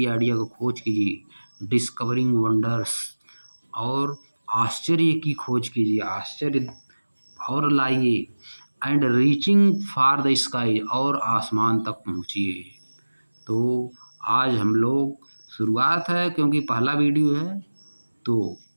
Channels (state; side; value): inverted; both; correlation -1.00